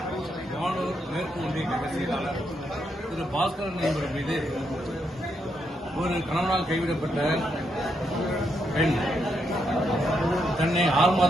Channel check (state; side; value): normal; both; correlation 0.80